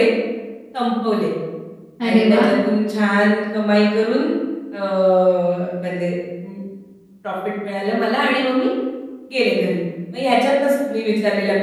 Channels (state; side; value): identical; both; correlation 1.00